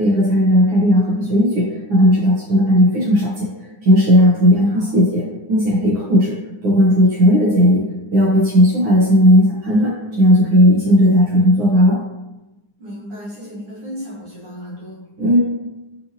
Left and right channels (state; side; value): late; left; 9.7 ms